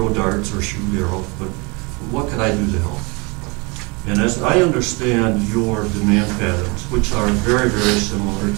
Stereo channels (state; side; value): quieter; left; 28.8 dB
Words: darts or shoot arrows, but what could I do to help? And as I understand your demand patterns, which are very, very similar